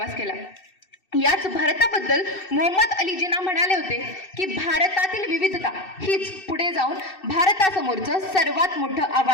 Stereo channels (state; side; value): late; right; 2.6 ms